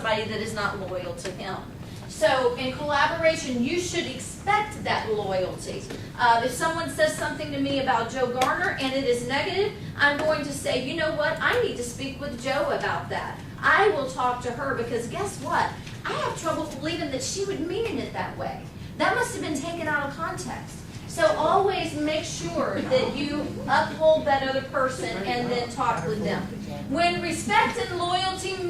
that is not loyal to him. So in collaboration, you should expect that loyalty. If someone says something to me about Joe Garner and it is negative, I'm going to say, you know what, I need to speak with Joe about that. I will talk to her because guess what? I have trouble believing that she would mean it that way. That must have been taken out of context. So always make sure that you uphold that other person and then talk with them. When respect and loyalty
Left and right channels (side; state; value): both; identical; correlation 1.00